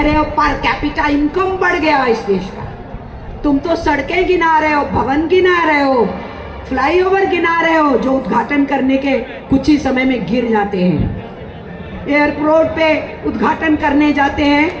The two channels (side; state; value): both; identical; correlation 1.00